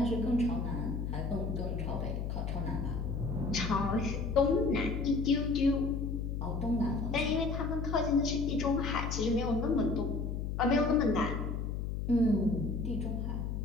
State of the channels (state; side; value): noise; left; hum, 3 dB below the sound